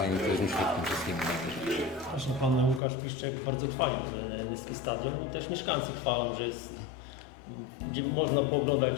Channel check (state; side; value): drops out; right; at 2.8 s